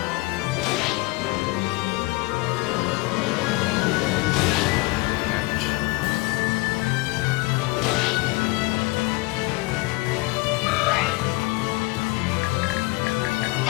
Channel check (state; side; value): quieter; right; 23.4 dB